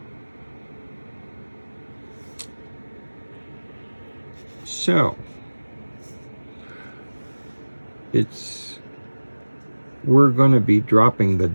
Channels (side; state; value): both; inverted; correlation -1.00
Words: So, we're going to be dropping the